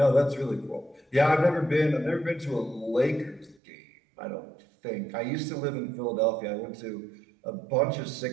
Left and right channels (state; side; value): drops out; left; at 3.6 s